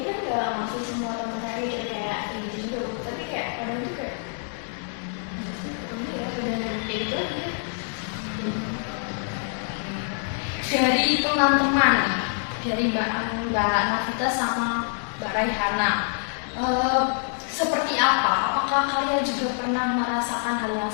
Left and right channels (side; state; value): right; silent; 61 dB below the other